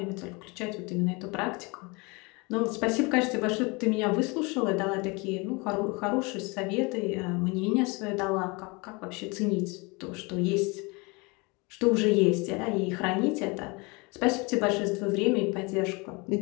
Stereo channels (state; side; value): quieter; right; 27.6 dB